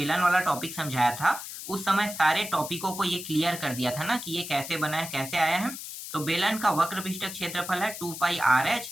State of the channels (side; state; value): left; noise; hiss, 9 dB below the sound